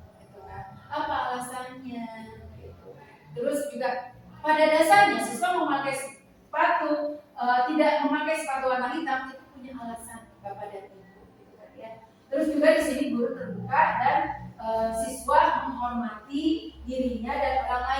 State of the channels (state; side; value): identical; both; correlation 1.00